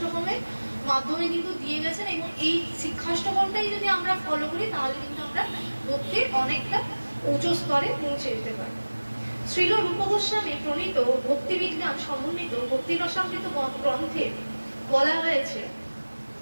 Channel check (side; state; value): both; inverted; correlation -1.00